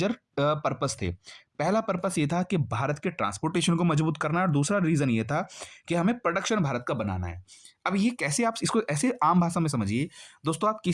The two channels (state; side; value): identical; both; correlation 1.00